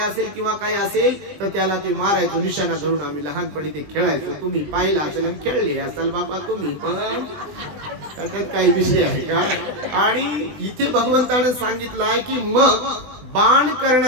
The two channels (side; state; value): left; late; 20 ms